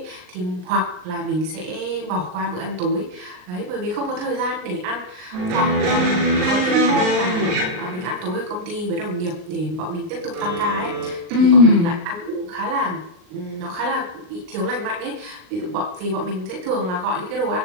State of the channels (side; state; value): left; late; 38 ms